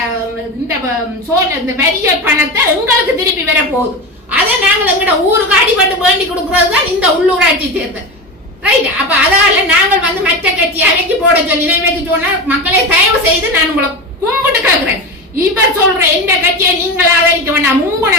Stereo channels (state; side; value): normal; both; correlation 0.23